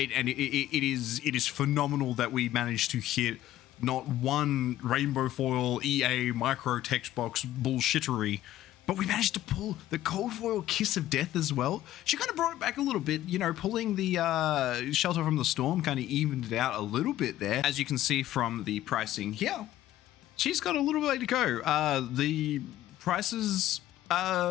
is phenomenal that we managed to hit not one Rainbow Foil EA micro text box bullshittery, but we managed to pull the Cold Foil Kiss of Death as well. She kind of brought it back a little bit, you know, pulling the Shelter from the Storm kind of evened it out a little bit there. As you can see from the pricing here, she's got a little way to go. The prices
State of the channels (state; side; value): quieter; right; 13.8 dB